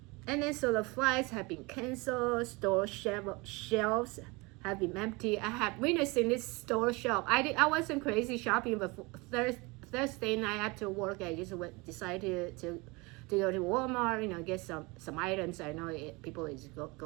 And then so the flights have been canceled, store shelves have been empty. I have witnessed in this store shelf. I wasn't crazy shopping, but Thursday night after work, I just decided to go to Walmart, get some items. I know people is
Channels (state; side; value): quieter; left; 25.8 dB